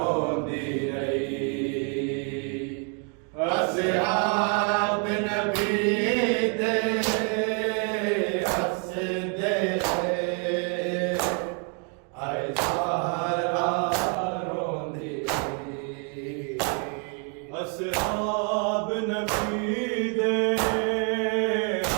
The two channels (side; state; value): left; quieter; 39.9 dB